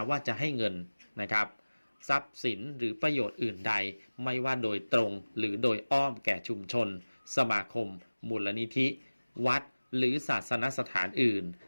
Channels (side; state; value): both; inverted; correlation -1.00